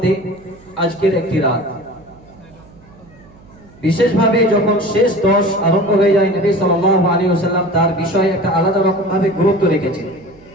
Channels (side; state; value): right; noise; hum, 25 dB below the sound